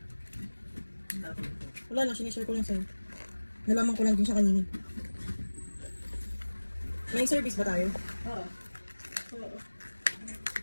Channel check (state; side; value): inverted; both; correlation -1.00